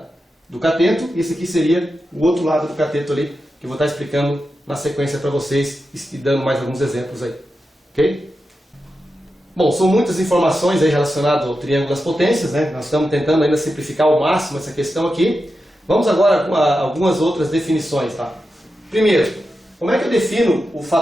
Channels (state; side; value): normal; both; correlation 0.90